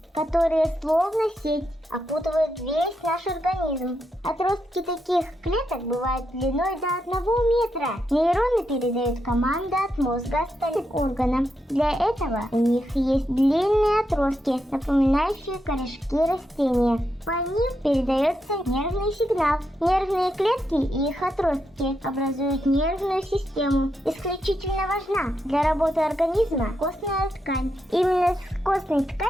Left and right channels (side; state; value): both; normal; correlation 0.83